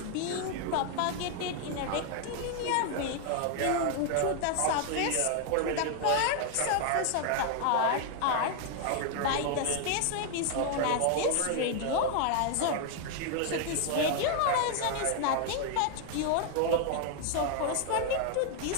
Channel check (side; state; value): both; different; correlation 0.00